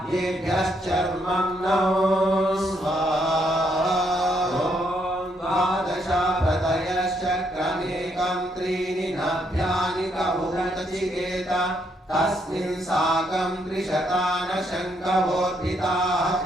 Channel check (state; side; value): normal; both; correlation 0.74